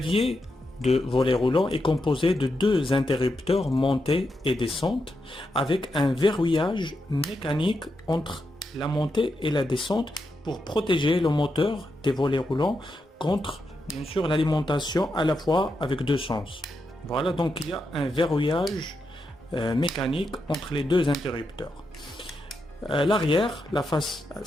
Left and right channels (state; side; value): normal; both; correlation 0.85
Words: de volet roulant est composé de deux interrupteurs montée et descente avec un verrouillage mécanique entre la montée et la descente pour protéger le moteur des volets roulants contre bien sûr l'alimentation à la fois avec deux sens. Voilà, donc il y a un verrouillage mécanique entre les deux interrupteurs. L'arrière, la face,